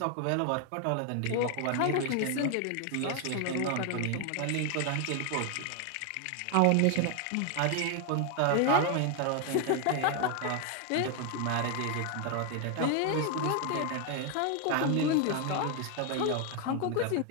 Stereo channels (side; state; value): both; different; correlation 0.01